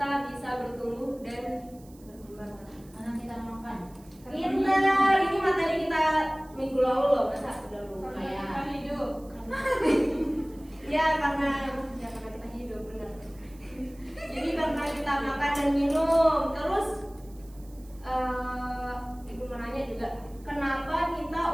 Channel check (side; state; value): right; noise; hiss, 26 dB below the sound